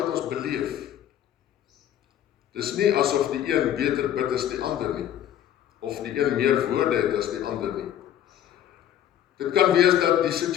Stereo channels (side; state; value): right; quieter; 10.9 dB